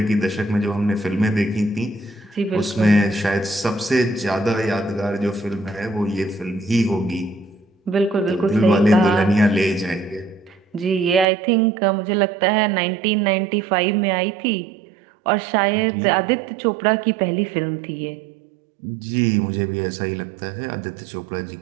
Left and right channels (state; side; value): drops out; left; at 11.2 s